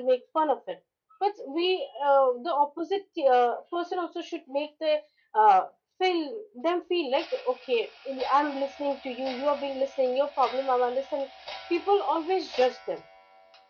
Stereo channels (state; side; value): identical; both; correlation 1.00